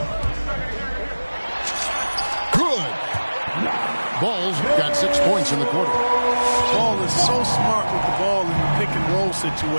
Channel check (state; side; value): inverted; both; correlation -1.00